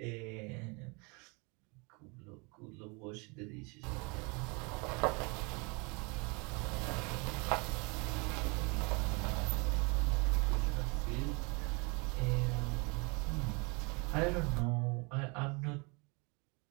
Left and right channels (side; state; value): left; quieter; 30.2 dB